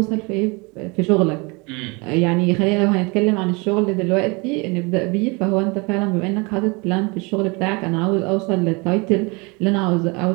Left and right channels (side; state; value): left; quieter; 28.4 dB